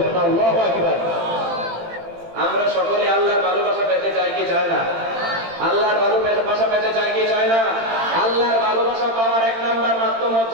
আল্লাহু আকবার। আমরা সকলে আল্লাহর ভালোবাসা পেতে চাই কি চাই না? আল্লাহর ভালোবাসা পেতে চাই কি চাই না? আল্লাহর ভালোবাসা পাওয়ার 1 নাম্বার মাধ্যম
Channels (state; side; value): late; left; 18 ms